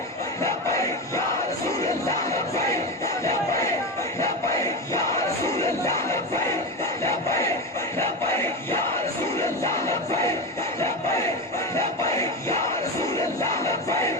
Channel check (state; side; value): normal; both; correlation 0.19